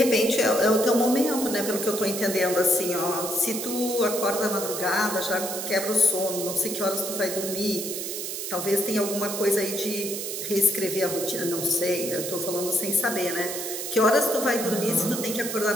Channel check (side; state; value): right; noise; hiss, 5 dB below the sound